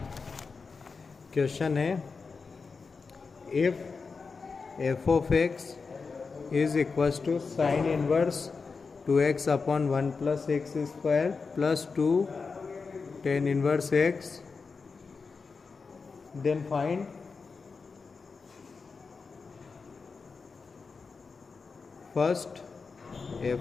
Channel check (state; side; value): quieter; right; 4.7 dB